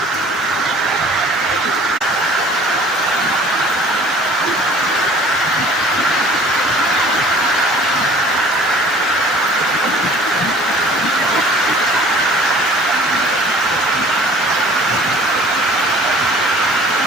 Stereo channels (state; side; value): normal; both; correlation 0.49